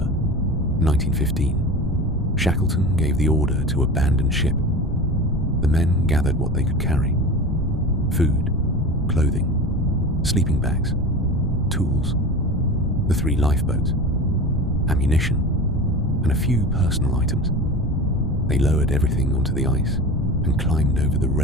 1915, Shackleton gave the order to abandon ship. The men gathered what they could carry: food, clothing, sleeping bags, tools, the 3 lifeboats, ammunition, and a few personal items. They lowered everything onto the ice and climbed over the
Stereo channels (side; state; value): both; normal; correlation 0.32